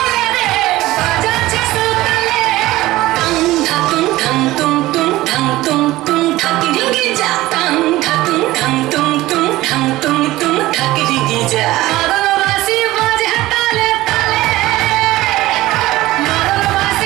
রে বাজাচ্ছে সোতালে টাং ধাতুম ধাং তুম তুম ধাং তুম তুম ধাকিরিঙ্গি যা টাং ধাতুম ধাং তুম তুম ধাং তুম তুম ধাকিরিঙ্গি যা মাগলবাসি বাজে তালে তালে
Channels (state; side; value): quieter; left; 17.4 dB